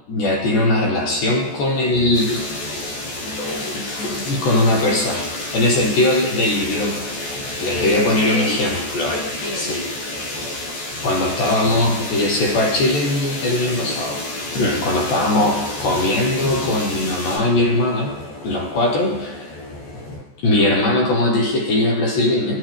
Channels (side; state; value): right; late; 14 ms